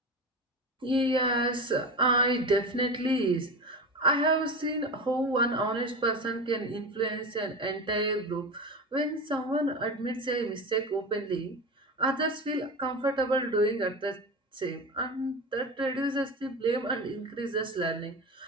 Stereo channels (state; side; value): normal; both; correlation 0.25